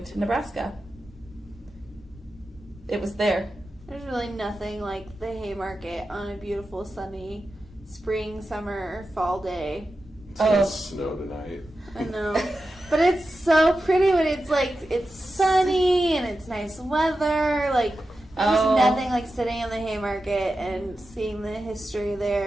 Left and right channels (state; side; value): normal; both; correlation 0.91